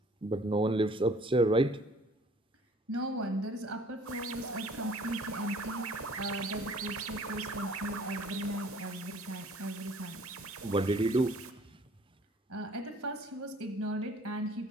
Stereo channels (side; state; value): both; normal; correlation 0.54